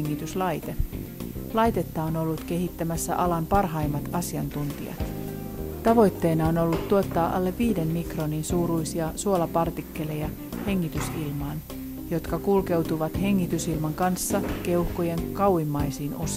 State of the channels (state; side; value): identical; both; correlation 1.00